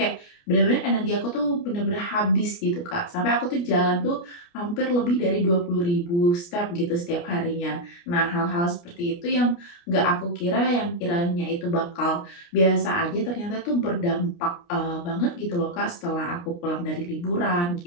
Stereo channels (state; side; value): late; right; 29 ms